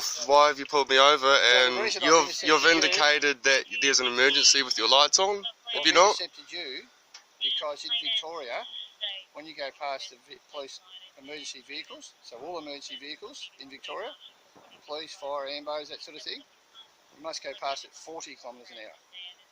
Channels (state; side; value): identical; both; correlation 1.00